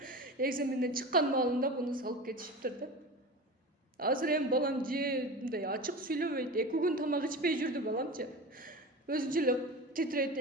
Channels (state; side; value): normal; both; correlation 0.31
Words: экзаменден чыккан маалында буну салып кетишиптир да. Азыр эми балам же мындай ачык сүйлөбөйт. 2 күн тамак ичпей жүрдү баламчы. Өзүнчө эле титрейт,